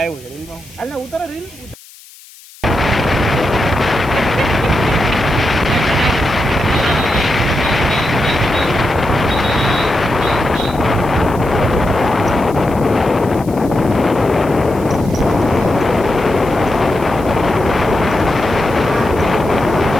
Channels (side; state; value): left; noise; hiss, 22 dB below the sound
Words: છે રીલ માં હાલ ને ઉતરો રીલ